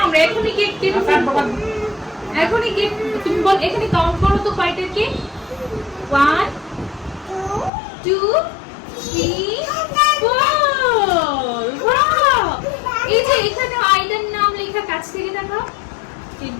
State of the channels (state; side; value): drops out; right; at 7.7 s